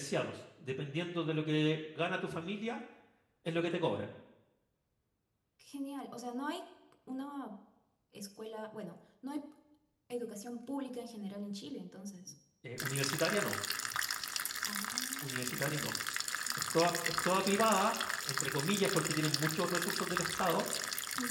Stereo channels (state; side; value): identical; both; correlation 1.00